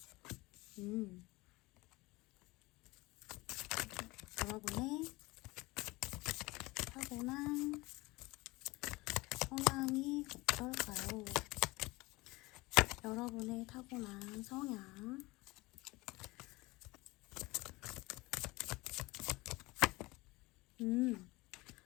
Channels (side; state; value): right; quieter; 22.0 dB